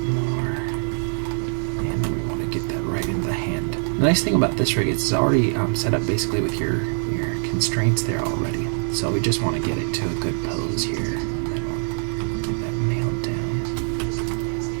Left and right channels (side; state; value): left; silent; digital silence